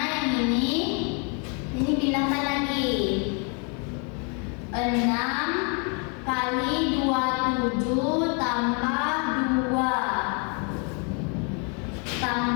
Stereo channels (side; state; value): right; quieter; 36.5 dB